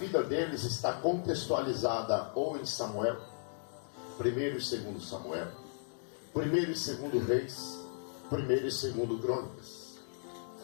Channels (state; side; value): silent; right; digital silence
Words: deles está contextualizada ou em Samuel, 1º e 2º Samuel, 1º e 2º Reis, 1º e 2º Crônicas.